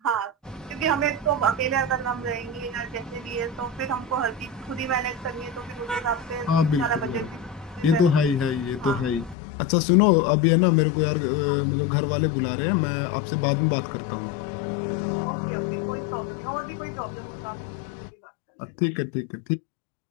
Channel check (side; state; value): right; drops out; at 9.3 s